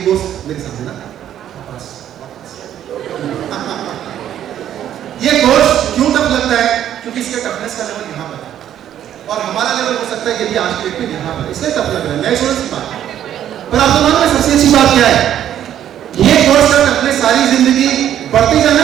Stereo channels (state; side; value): quieter; left; 10.8 dB